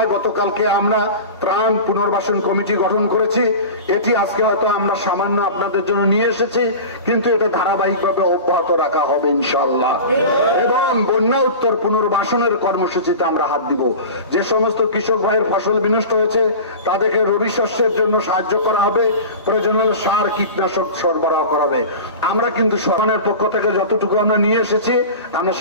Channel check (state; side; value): inverted; both; correlation -0.33